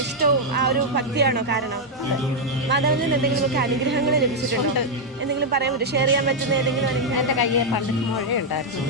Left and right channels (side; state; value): both; normal; correlation -0.01